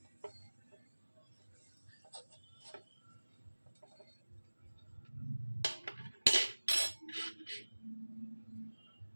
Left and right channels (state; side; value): inverted; both; correlation -1.00